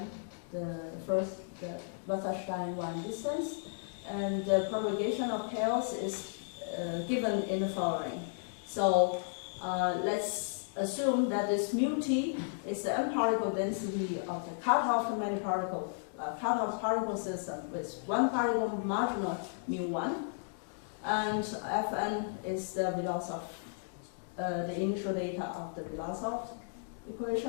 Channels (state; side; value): silent; right; digital silence